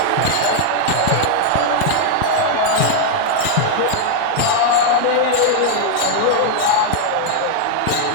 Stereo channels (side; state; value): both; different; correlation 0.00